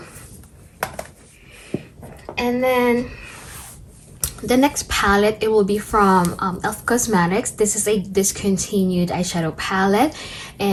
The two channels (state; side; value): identical; both; correlation 1.00